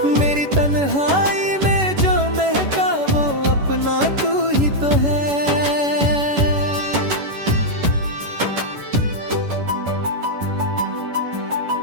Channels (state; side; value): late; left; 11 ms